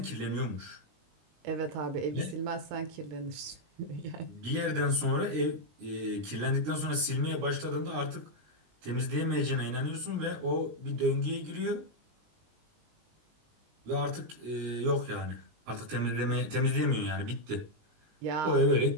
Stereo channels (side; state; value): left; late; 20 ms